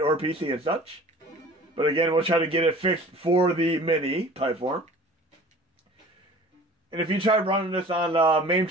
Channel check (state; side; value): normal; both; correlation 0.45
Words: PC and such. But again, we'll try to get it fixed for the Mini platform. And if you try running this on MAME